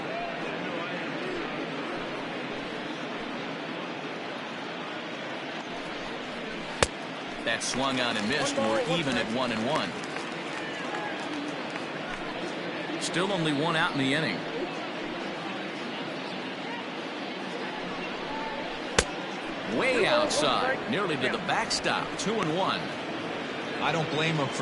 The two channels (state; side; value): identical; both; correlation 1.00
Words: That swung on and missed. We're even at 1-1. Still only one out in the inning. Way outside, nearly to the backstop. 2-1. I don't blame him